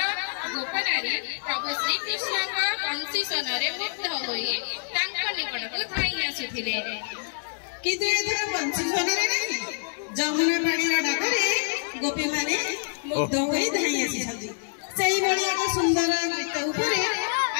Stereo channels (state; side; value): silent; right; 61 dB below the other